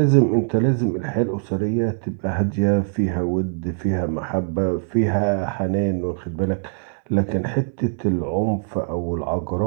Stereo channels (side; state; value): left; silent; digital silence